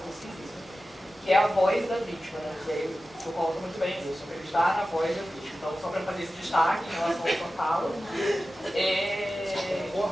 que é a voz da vítima, né? E aí o senhor coloca muito bem isso, acreditar na voz da vítima. Então, só para fazer esse destaque em relação à sua fala.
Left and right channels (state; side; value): normal; both; correlation 0.94